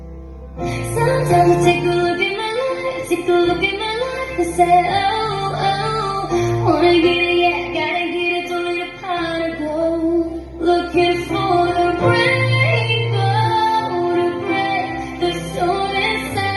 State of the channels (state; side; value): identical; both; correlation 1.00